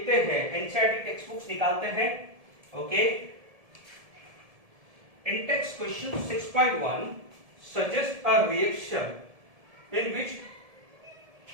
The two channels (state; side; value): late; left; 1.7 ms